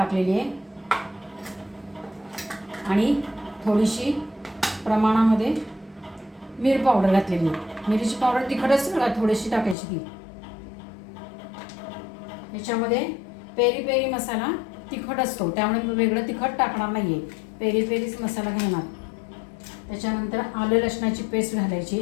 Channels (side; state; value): right; drops out; at 9.8 s